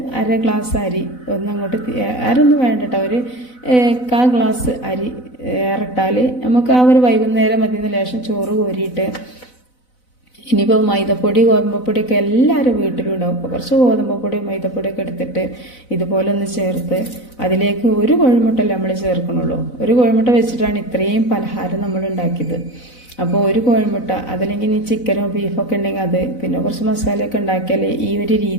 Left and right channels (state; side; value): late; right; 4.0 ms